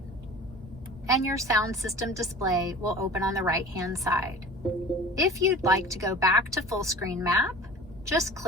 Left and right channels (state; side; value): normal; both; correlation 0.41